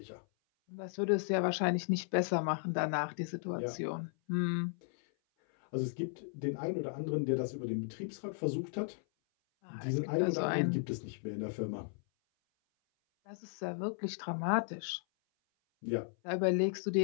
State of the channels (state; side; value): silent; right; 54 dB below the other